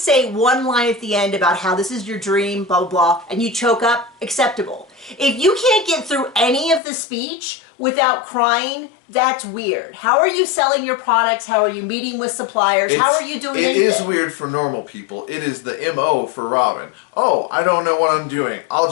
one line at the end about how this is your dream, blah, blah, blah, and you choke up, acceptable. If you can't get through any of the speech without crying, that's weird. How are you selling your products? How are you meeting with suppliers? How are you doing anything? It is weird for normal people. It is the MO for Robin. Oh, I don't know what I'm doing. I'll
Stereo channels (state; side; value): drops out; right; at 6.8 s